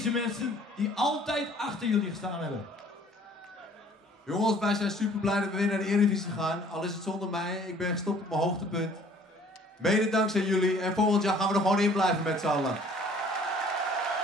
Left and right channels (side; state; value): both; normal; correlation 0.55